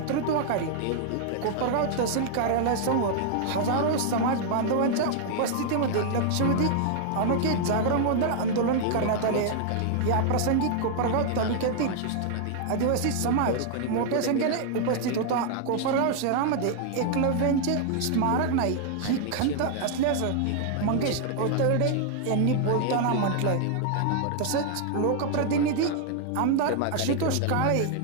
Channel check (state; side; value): different; both; correlation 0.00